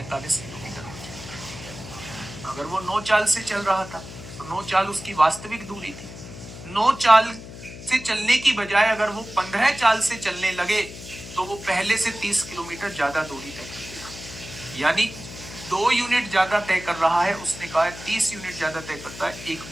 किलोमीटर हो जाएगी। अगर वो 9 चाल से चल रहा था तो 9 चाल उसकी वास्तविक दूरी थी। 9 चाल से चलने की बजाय अगर वो 15 चाल से चलने लगे तो वो पहले से 30 किलोमीटर ज्यादा दूरी तय कर देगा, यानी 2 यूनिट ज्यादा तय कर रहा है। उसने कहा है 30 यूनिट ज्यादा तय करता है। 1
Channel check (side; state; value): left; noise; hum, 13 dB below the sound